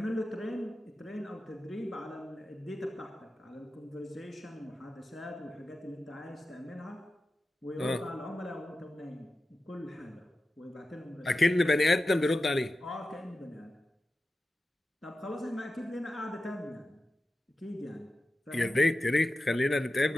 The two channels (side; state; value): both; normal; correlation 0.93